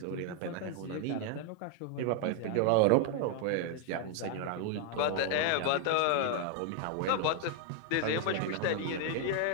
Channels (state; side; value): different; both; correlation 0.00